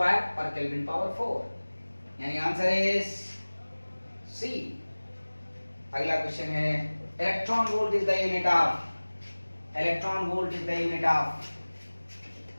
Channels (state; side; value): inverted; both; correlation -1.00